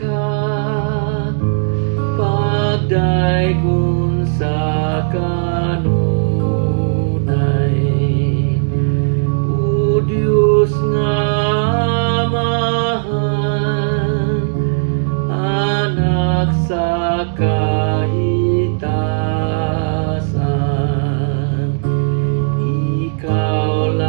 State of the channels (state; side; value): silent; left; digital silence